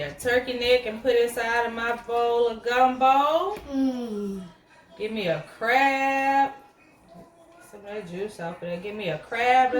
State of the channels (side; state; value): both; identical; correlation 1.00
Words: a turkey neck and put it inside of my bowl of gumbo. Give me a crab. Some of that juice off of there. Give me a crab